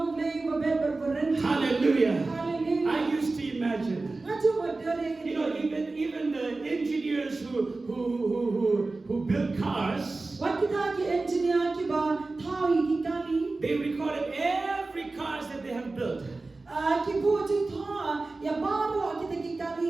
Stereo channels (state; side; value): quieter; left; 3.4 dB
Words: Hallelujah. I used to imagine, even the engineers who build cars, they recorded every cars that they have built.